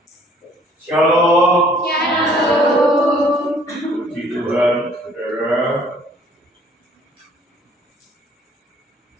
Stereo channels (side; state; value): both; normal; correlation 0.58